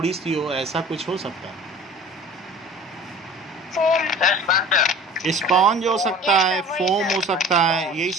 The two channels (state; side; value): normal; both; correlation 0.42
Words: सी हो, ऐसा कुछ हो सकता है। स्पॉन्ज हो सकता है, फोम हो सकता है, यही